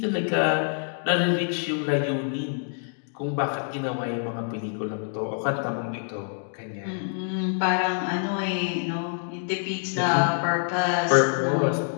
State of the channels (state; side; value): silent; right; 61 dB below the other